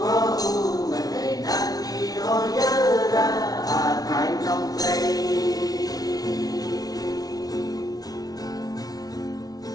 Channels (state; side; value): late; right; 0.18 ms